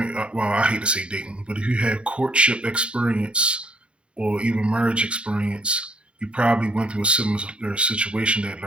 Well, I hate to say dating, but if you have courtship experience or even marriage experience, you probably went through a similar situation that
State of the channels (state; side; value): late; left; 0.058 ms